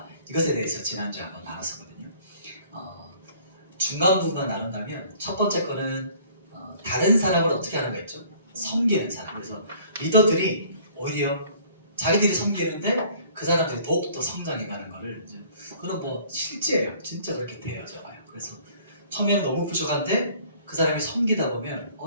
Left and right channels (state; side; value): inverted; both; correlation -0.54